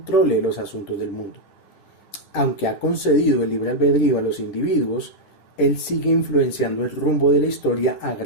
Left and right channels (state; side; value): late; right; 10 ms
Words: los asuntos del mundo. Aunque ha concedido el libre albedrío a los individuos, Él sigue influenciando el rumbo de la historia a